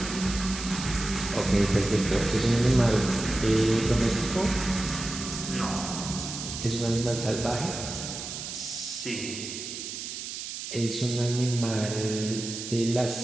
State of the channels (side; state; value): right; noise; hiss, 7 dB below the sound